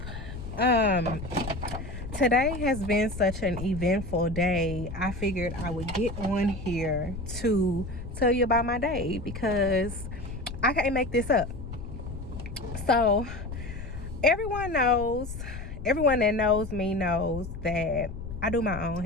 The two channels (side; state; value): left; noise; rumble, 9 dB below the sound